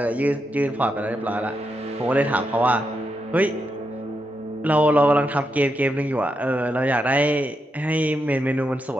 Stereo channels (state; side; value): normal; both; correlation 0.84